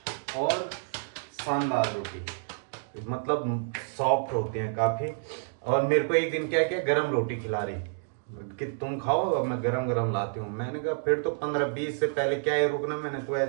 और शानदार रोटी, मतलब सॉफ्ट होती है काफी। और मेरे को एक दिन क्या क्या गरम रोटी खिला रही कि तुम खाओ, अब मैं गरम गरम लाती हूँ। मैंने कहा फिर तो 15-20 से पहले क्या है रुकना, मैंने तो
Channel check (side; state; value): left; silent; digital silence